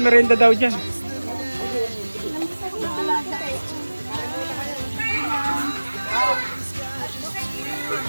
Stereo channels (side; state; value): both; inverted; correlation -1.00